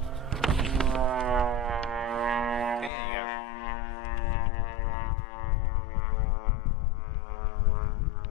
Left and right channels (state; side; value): drops out; right; at 2.9 s